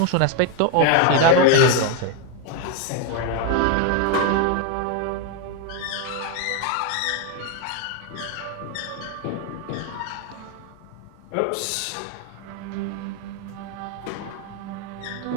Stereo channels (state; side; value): different; both; correlation 0.01